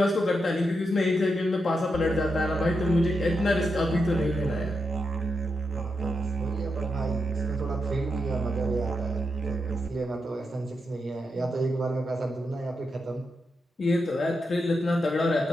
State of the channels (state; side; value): normal; both; correlation 0.85